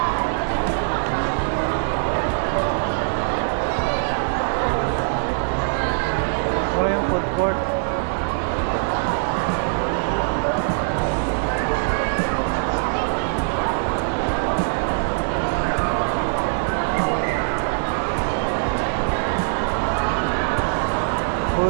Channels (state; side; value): silent; left; digital silence